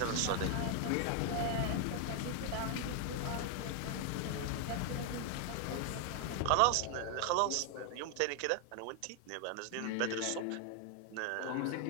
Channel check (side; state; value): both; different; correlation 0.00